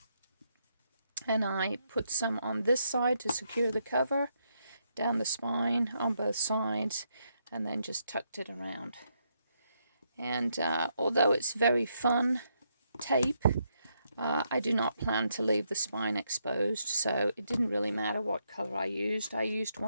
And I put some on this side to secure the cover, down the spine on both sides, and then just tucked it around. And although it's very fun tape, I do not plan to leave the spine exposed, so it didn't really matter what color I used. I used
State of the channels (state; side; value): inverted; both; correlation -0.78